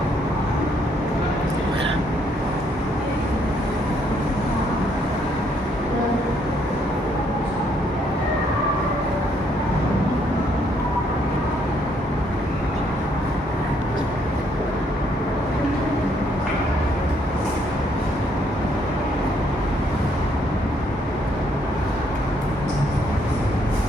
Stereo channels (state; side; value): normal; both; correlation 0.70